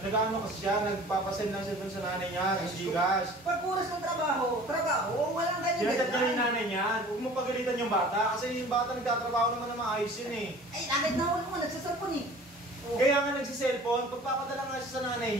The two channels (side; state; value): both; normal; correlation 0.45